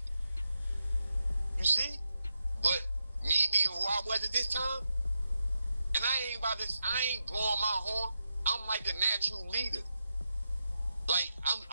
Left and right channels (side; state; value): both; inverted; correlation -0.87